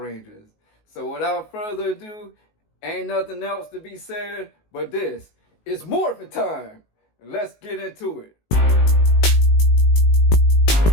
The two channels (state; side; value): late; right; 19 ms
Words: So without further ado, ain't nothing else to be said, but this is Morphin time. Let's get into it.